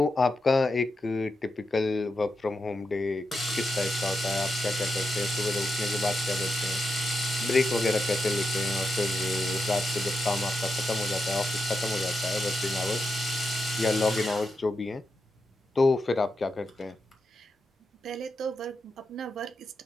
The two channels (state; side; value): normal; both; correlation 0.86